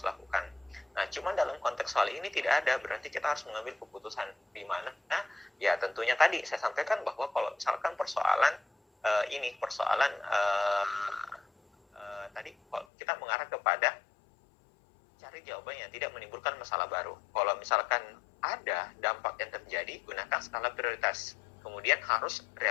lakukan. Nah, cuman dalam konteks soal ini tidak ada, berarti kita harus mengambil keputusan di mana. Nah, ya tentunya tadi saya sampaikan bahwa kalau misalkan persoalan tadi kita mengarah kepada cari jawaban yang tidak menimbulkan masalah baru. Kalau misalkan ada dampak yang terjadi, gunakan skala prioritas. Kemudian harus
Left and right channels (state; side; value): drops out; right; at 12.9 s